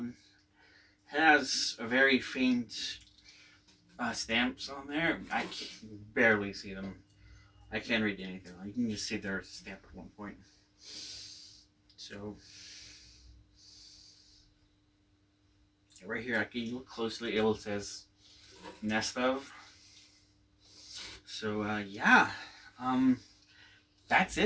It has a very faint stamps on there. I can barely see them. I can't read anything. You can just see there's a stamp at one point. So right here, I can look closely. It says Nestof. So yeah, that's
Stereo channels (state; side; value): identical; both; correlation 1.00